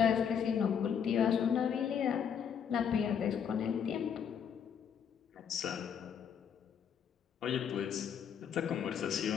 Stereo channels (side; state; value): right; quieter; 7.7 dB